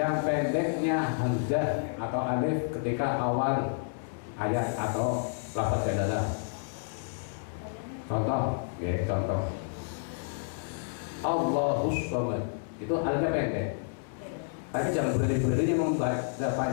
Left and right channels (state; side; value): silent; right; 58 dB below the other